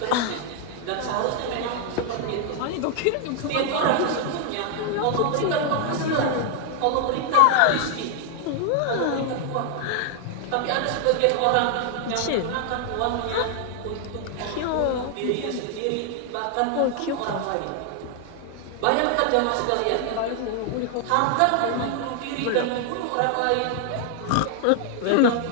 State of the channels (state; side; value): different; both; correlation 0.00